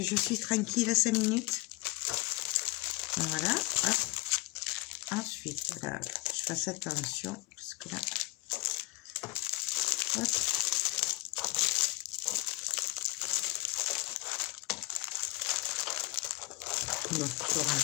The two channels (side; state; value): right; quieter; 20.7 dB